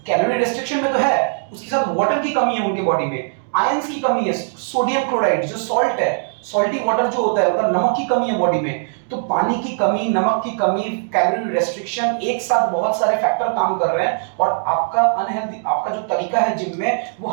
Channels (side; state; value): left; silent; digital silence